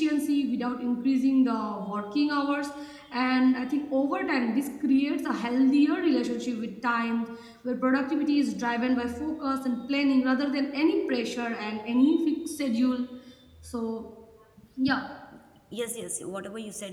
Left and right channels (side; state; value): both; identical; correlation 1.00